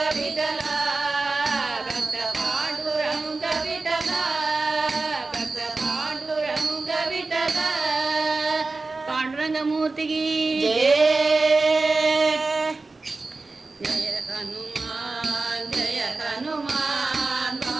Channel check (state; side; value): quieter; left; 3.6 dB